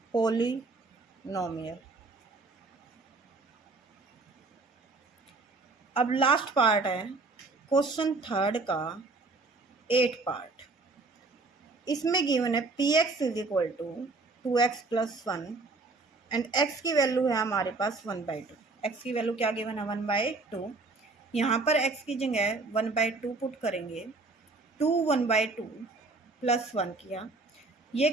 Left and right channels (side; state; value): left; quieter; 3.6 dB